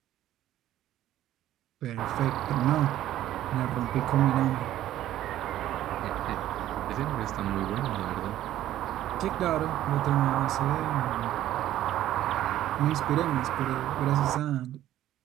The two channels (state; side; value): quieter; left; 13.0 dB